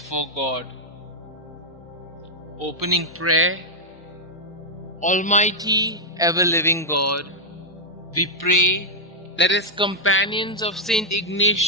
God. Opening prayer. Almighty, ever-living God, we pray that as companions of St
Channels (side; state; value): both; normal; correlation -0.03